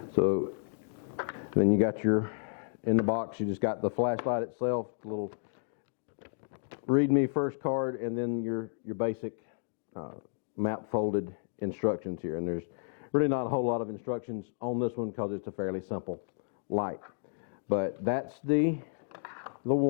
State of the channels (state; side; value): silent; right; digital silence